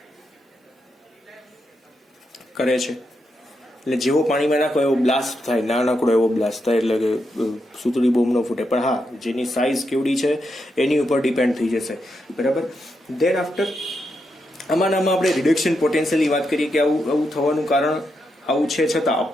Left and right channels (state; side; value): normal; both; correlation 0.83